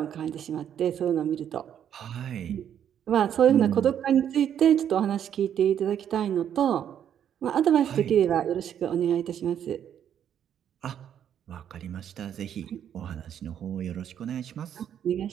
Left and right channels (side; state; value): left; quieter; 9.4 dB